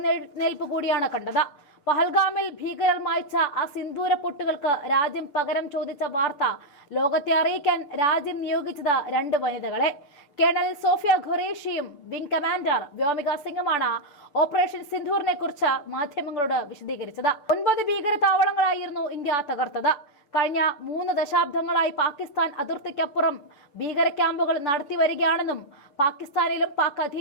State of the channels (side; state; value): right; late; 6.9 ms